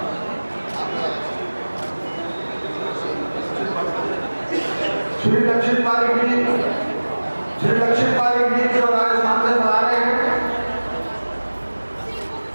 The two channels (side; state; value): both; inverted; correlation -1.00